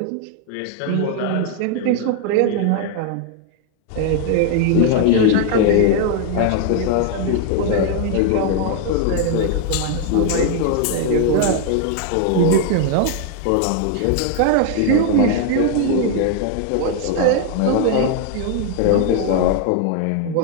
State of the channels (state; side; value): different; both; correlation 0.00